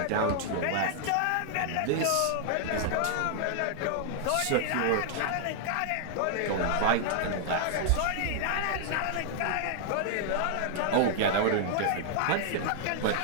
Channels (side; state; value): both; different; correlation 0.00